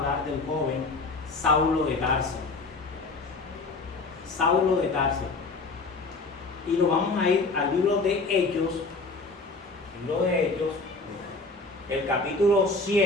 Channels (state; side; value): quieter; right; 3.6 dB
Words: del joven Saulo de Tarso. Saulo de Tarso. Y lo vamos a ir al libro de Hechos, el capítulo